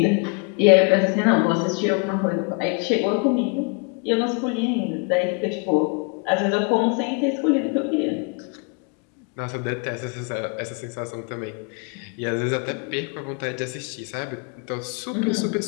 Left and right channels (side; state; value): right; quieter; 35.1 dB